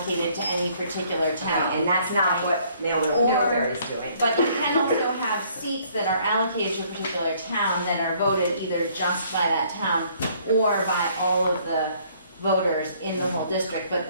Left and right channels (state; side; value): inverted; both; correlation -0.62